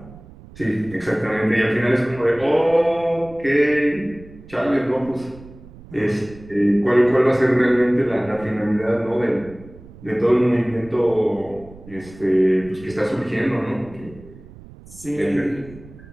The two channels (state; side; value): noise; right; rumble, 20 dB below the sound